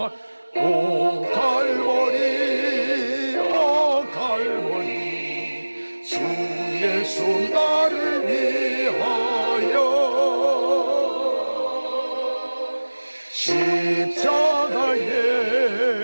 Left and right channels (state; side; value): inverted; both; correlation -1.00